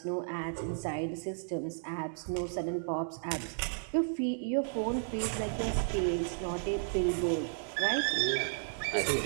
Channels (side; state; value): left; silent; digital silence